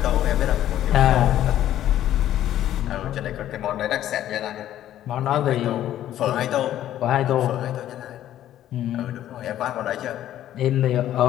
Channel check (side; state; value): right; quieter; 12.2 dB